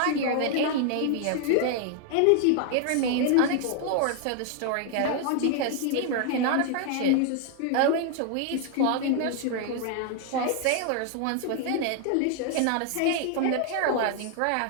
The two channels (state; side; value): different; both; correlation 0.00